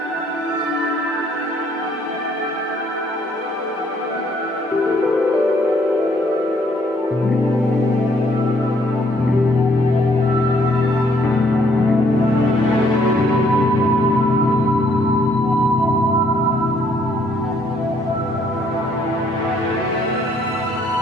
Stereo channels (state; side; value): normal; both; correlation 0.66